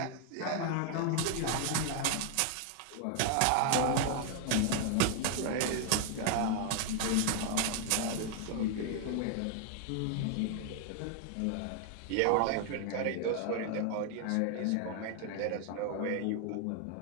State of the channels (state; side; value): different; both; correlation 0.00